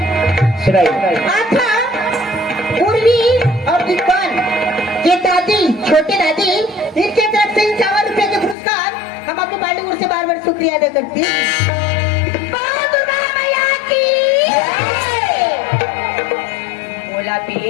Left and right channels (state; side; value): drops out; right; at 8.6 s